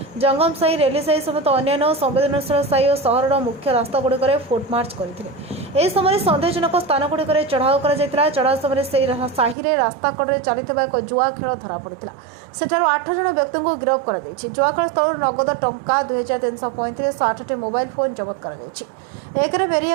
ଜଙ୍ଗମସାହି, ରେଲିସାହି ସମେତ ଅନ୍ୟାନ୍ୟ ସମ୍ବେଦନଶୀଳ ସାହି ଓ ସହରର ମୁଖ୍ୟ ରାସ୍ତାଗୁଡ଼ିକରେ ଫୁଟମାର୍ଚ୍ଚ କରିଥିଲେ। ଏହି ସମୟରେ ସନ୍ଦେହଜନକ ସ୍ଥାନଗୁଡ଼ିକରେ ଚଢ଼ାଉ କରାଯାଇଥିଲା। ଚଢ଼ାଉ ସମୟରେ ସେହି ସାହିରେ ରାସ୍ତା କଡ଼ରେ ଚାଲିଥିବା ଏକ ଜୁଆ ଖେଳ ଧରାପଡ଼ିଥିଲା। ସେଠାରୁ 8 ଜଣ ବ୍ୟକ୍ତିଙ୍କୁ ଗିରଫ କରାଯାଇଛି। ଜୁଆଖେଳ ସ୍ଥଳରୁ ନଗଦ ଟଙ୍କା 2335 ଓ 8ଟି ମୋବାଇଲ ଫୋନ୍ ଜବତ କରାଯାଇଛି। ଏକରେ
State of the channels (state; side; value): drops out; left; at 9.6 s